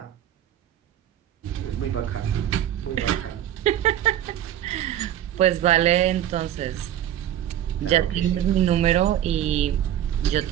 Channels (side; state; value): left; quieter; 11.4 dB